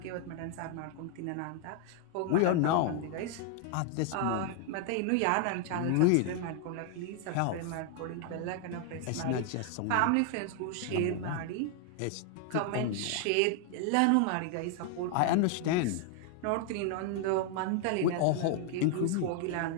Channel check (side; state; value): both; different; correlation 0.00